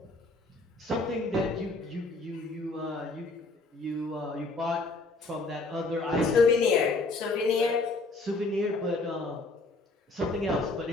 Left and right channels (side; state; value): right; quieter; 3.3 dB